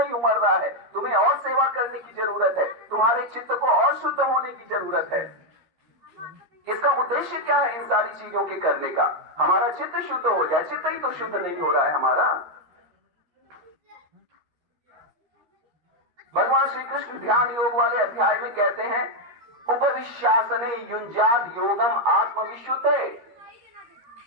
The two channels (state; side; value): late; left; 13 ms